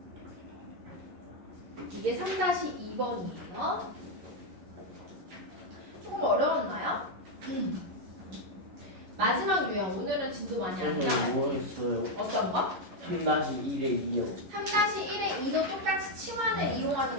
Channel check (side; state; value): left; late; 11 ms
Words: 이게 3-2번이에요. 조금 어려웠나요? 마지막 유형. 오늘은 진도 많이 안 선생님 나와요. 뭐 했어요? 어떤 거? 3-1에 2요. 3-1의 2도 똑같이 치환을 이용하는